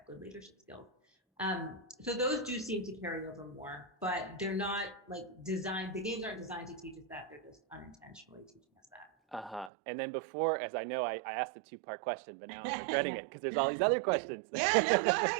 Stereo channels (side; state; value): left; drops out; at 9.7 s